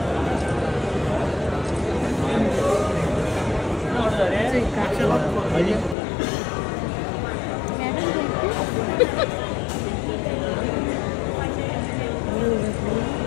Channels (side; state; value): right; drops out; at 6.0 s